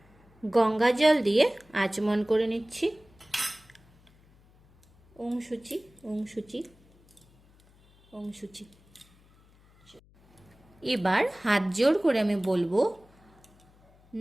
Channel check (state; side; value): noise; left; hum, 29 dB below the sound